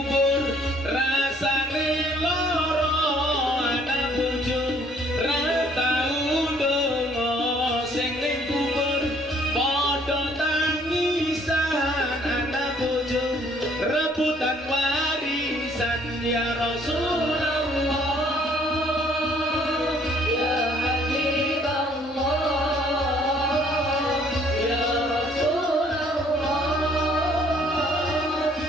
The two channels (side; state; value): both; normal; correlation 0.62